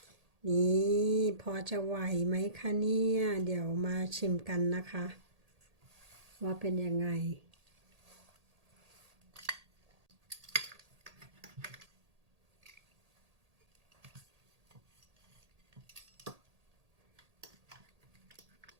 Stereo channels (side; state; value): left; late; 1.8 ms